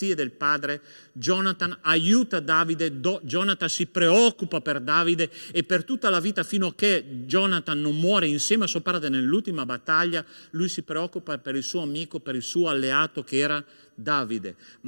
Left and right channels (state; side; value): inverted; both; correlation -1.00